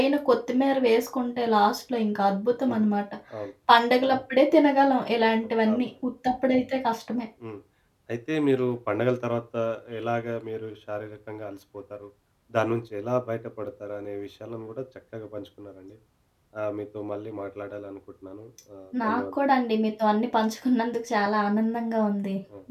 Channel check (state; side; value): identical; both; correlation 1.00